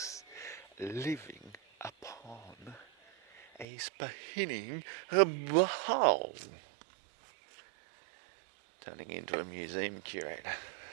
living upon a spinning ball. Turning into a museum curator.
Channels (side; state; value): left; drops out; at 3.7 s